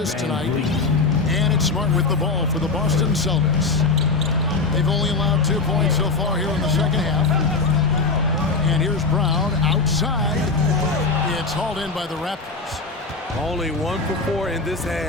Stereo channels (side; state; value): right; quieter; 3.9 dB